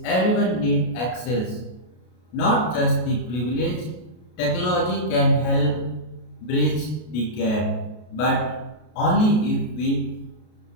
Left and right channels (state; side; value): late; right; 33 ms